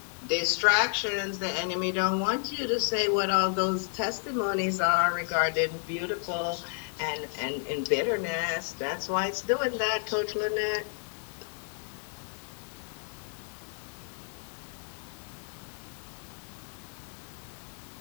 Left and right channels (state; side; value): silent; right; digital silence